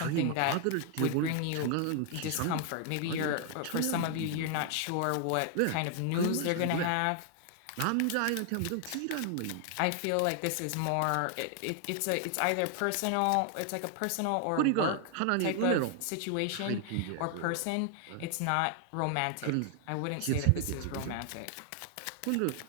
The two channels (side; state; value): both; different; correlation 0.00